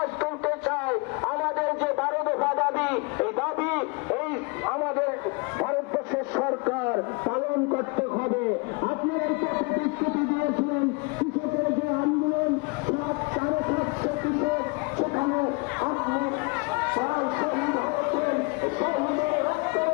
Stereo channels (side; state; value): right; quieter; 29.8 dB